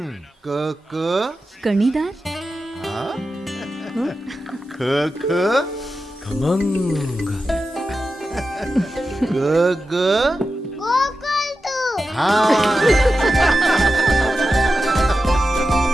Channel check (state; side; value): normal; both; correlation 0.91